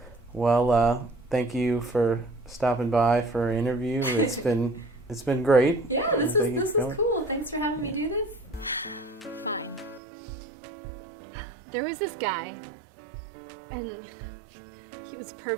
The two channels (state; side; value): drops out; left; at 10.0 s